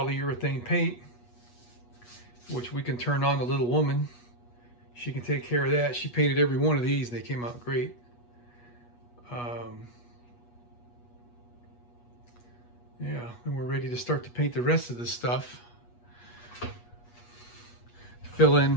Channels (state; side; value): late; right; 8.3 ms